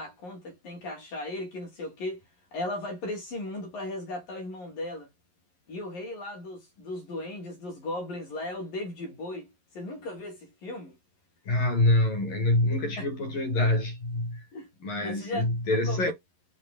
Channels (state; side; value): late; right; 11 ms